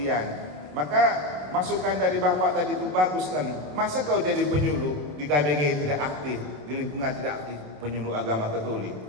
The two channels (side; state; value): left; late; 27 ms